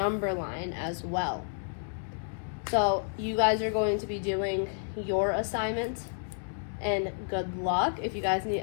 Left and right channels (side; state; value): right; silent; digital silence